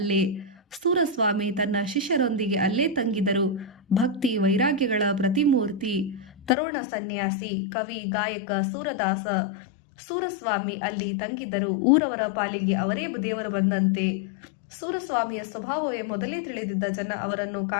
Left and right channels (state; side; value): drops out; right; at 6.6 s